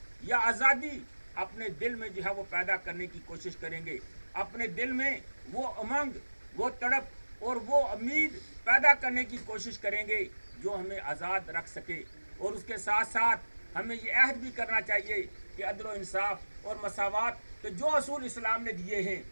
या आज़ादी अपने दिल में जो है वो पैदा करने की कोशिश करेंगे, अपने दिल में वो उमंग, वो तड़प और वो उम्मीद पैदा करने की कोशिश करेंगे जो हमें आज़ाद रख सके। और उसके साथ साथ हमें ये अहद भी करना चाहिए कि अदल व इंसाफ और मसावत के जो असूल इस्लाम ने दिए हैं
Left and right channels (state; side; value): inverted; both; correlation -1.00